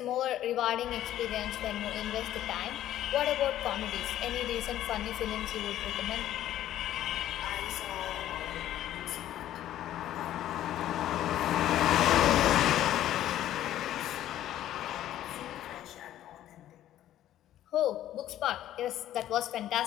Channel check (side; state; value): right; quieter; 12.6 dB